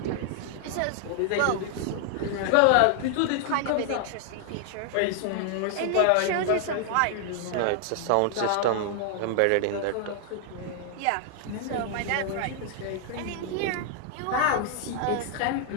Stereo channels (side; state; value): both; different; correlation 0.00